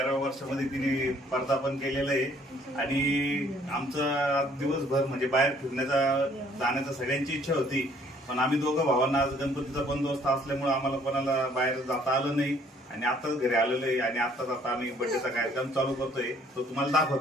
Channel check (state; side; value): normal; both; correlation 0.61